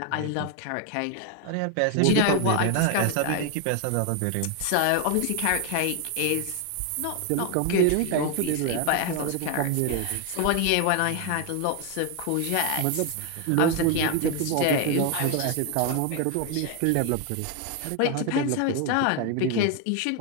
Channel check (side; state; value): both; different; correlation 0.01